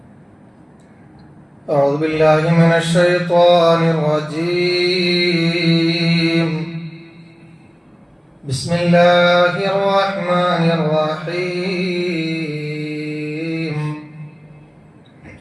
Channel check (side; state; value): both; identical; correlation 1.00